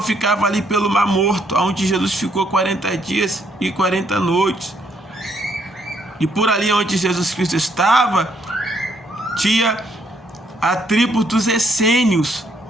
ficava ali pelo Mar Morto, onde Jesus ficou 40 dias e 40 noites. E por ali onde Jesus Cristo estava, tinha a tribo dos essênios,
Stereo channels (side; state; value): both; normal; correlation 0.71